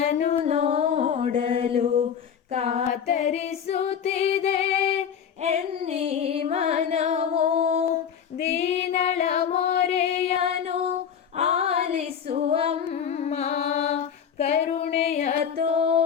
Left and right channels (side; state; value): right; quieter; 7.9 dB